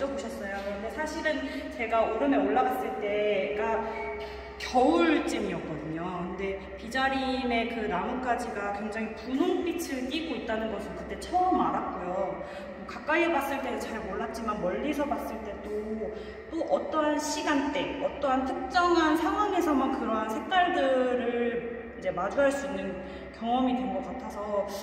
근데 사실은 제가 오름에 올라갔을 때가 겨울쯤이었거든요. 근데 비자림의 그 나뭇가지가 굉장히 분홍빛을 띠고 있다는 것을 그때 처음 알았고요. 가까이에 봤을 때는 잘 몰랐지만 멀리서 봤을 때도 또 어떠한 시간대, 어떠한 특정한 상황에서만 그러한 색깔들을 이제 마주할 수 있는 경험이 된 것 같아서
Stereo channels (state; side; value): identical; both; correlation 1.00